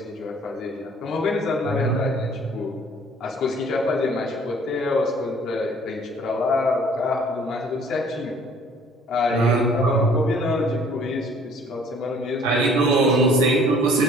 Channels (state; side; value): normal; both; correlation 0.56